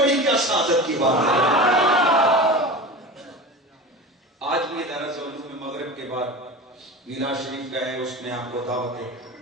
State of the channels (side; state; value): both; normal; correlation 0.31